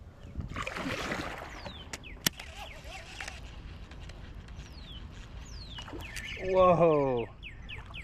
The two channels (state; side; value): identical; both; correlation 1.00